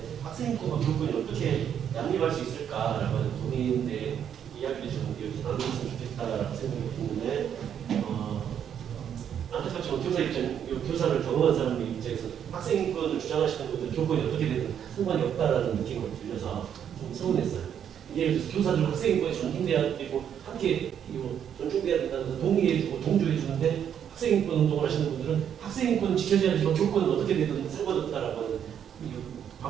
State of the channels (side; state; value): left; quieter; 8.9 dB